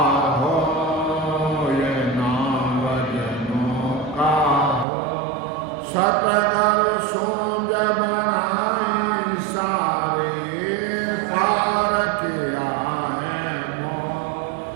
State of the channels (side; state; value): left; drops out; at 4.9 s